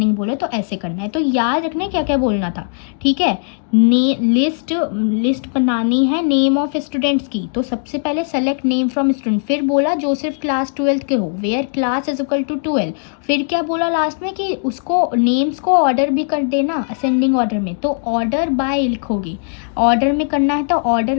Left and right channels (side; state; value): right; silent; digital silence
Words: बोले तो ऐसे करना है। तो याद रखना है क्या क्या बोलना था। ठीक है, लिस्ट बनानी है नेम ऑफ स्टूडेंट्स की, तो सबसे पहले सेलेक्ट नेम फ्रॉम स्टूडेंट, फिर बोला जो सिर्फ क्लास 12 के हो, where class is equal to 12। फिर क्या बोला लास्ट में कि उसको नेम्स को ऑर्डर भी कर देना असेंडिंग ऑर्डर में, तो ऑर्डर बाय लिखोगे, ऑर्डर में करना है तो